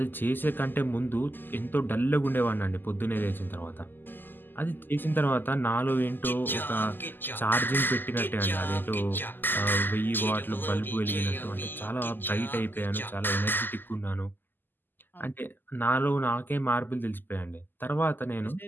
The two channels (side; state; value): right; late; 0.091 ms